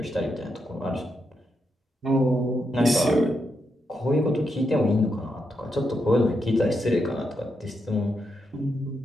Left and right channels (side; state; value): both; normal; correlation 0.83